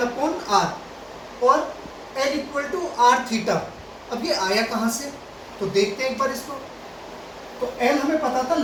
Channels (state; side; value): identical; both; correlation 1.00